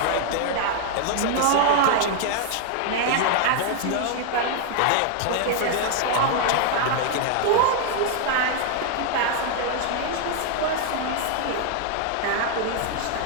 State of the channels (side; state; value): both; different; correlation 0.00